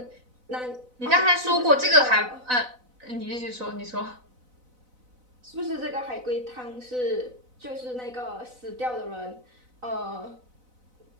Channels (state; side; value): late; left; 4.0 ms